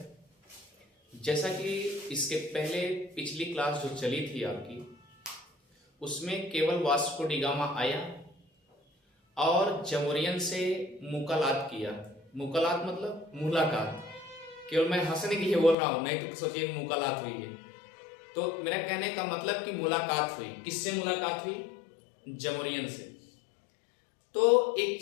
जैसा कि इसके पहले पिछली क्लास जो चली थी आपकी, उसमें केवल वास्को डी गामा आया और जमोरियन से मुलाकात किया। मुलाकात मतलब मुलाकात, केवल मैं हंसने के लिए बोल रहा हूं, नहीं तो सोचिए मुलाकात हुई है। तो मेरा कहने का मतलब कि मुलाकात हुई। किससे मुलाकात हुई? जमोरियन से। तो एक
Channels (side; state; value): right; drops out; at 15.8 s